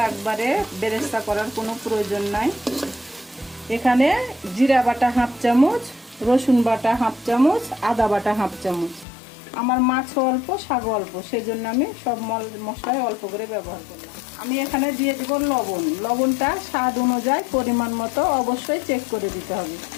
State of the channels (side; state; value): right; drops out; at 9.1 s